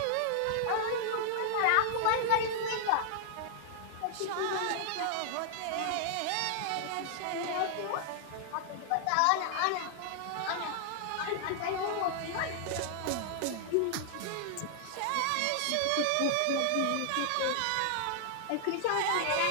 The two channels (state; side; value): different; both; correlation 0.00